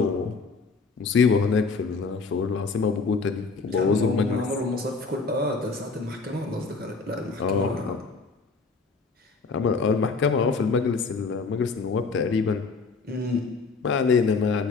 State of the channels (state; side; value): quieter; right; 4.4 dB